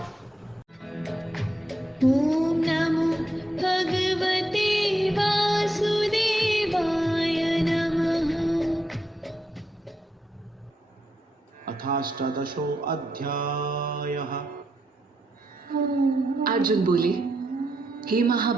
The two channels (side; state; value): both; normal; correlation 0.82